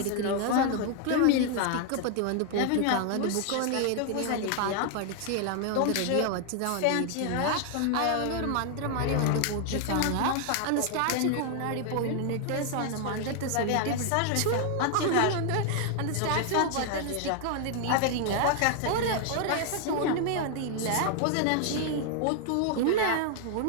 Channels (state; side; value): different; both; correlation 0.00